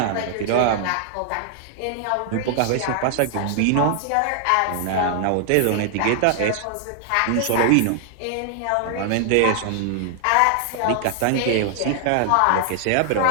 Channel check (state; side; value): different; both; correlation 0.00